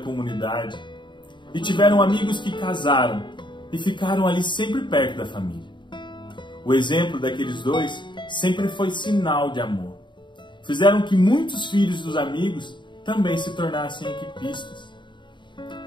e tiveram amigos que casaram e ficaram ali sempre perto da família. O exemplo daqueles dois sempre foi sinal de amor. Fizeram que muitos filhos dos amigos também se tornassem equipistas.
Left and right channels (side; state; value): right; late; 0.23 ms